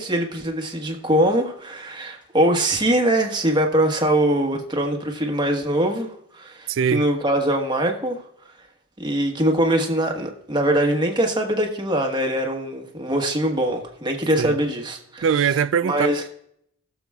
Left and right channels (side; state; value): both; normal; correlation 0.37